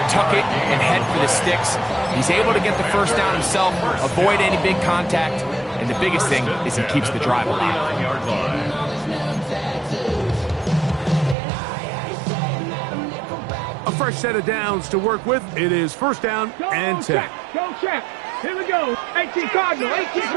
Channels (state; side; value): drops out; left; at 11.4 s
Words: Tuck it and head for the sticks. He's able to get the first down himself, avoid any big contact, and the biggest thing is he keeps the drive alive. A fresh set of downs to work with. It is first down and 10. Go check. Here we go. 18 Cardinal. 18